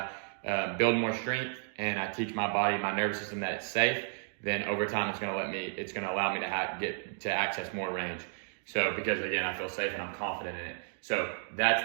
build more strength and I teach my body, my nervous system that it's safe, then over time it's going to allow me to get to access more range. So because again, I feel safe and I'm confident in it. So that's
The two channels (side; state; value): left; silent; 56 dB below the other